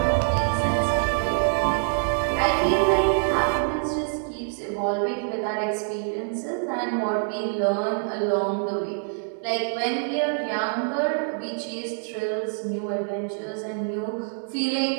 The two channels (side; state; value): left; silent; digital silence